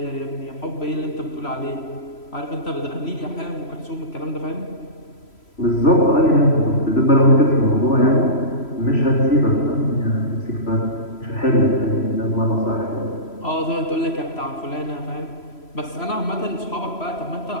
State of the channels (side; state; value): right; late; 3.0 ms